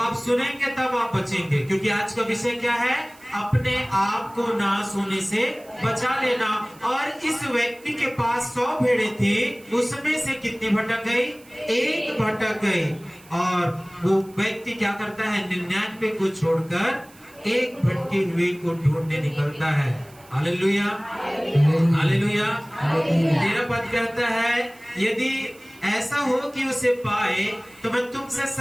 आप सुनेंगे तब आप बचेंगे, क्योंकि आज का विषय क्या है, अपने आप को नाश होने से बचा लेना। और इस व्यक्ति के पास 100 भेड़ें थी, उसमें से कितनी भटक गई, एक भटक गई। और वो व्यक्ति क्या करता है, 99 को छोड़कर एक भटकी हुई को ढूंढने निकलता है। Hallelujah hallelujah. 13 पद कहता है, यदि ऐसा हो कि उसे पाए तो मैं तुमसे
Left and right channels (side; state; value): right; noise; hiss, 25 dB below the sound